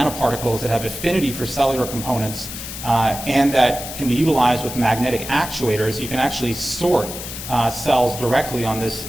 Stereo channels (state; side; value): noise; left; hiss, 9 dB below the sound